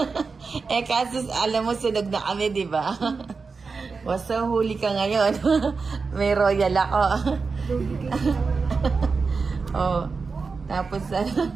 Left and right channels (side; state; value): left; quieter; 4.7 dB